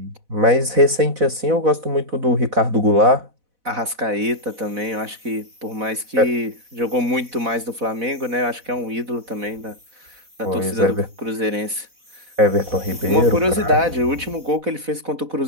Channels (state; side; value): late; left; 4.1 ms